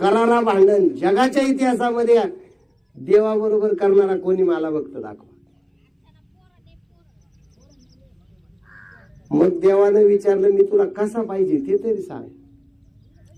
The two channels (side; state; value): both; identical; correlation 1.00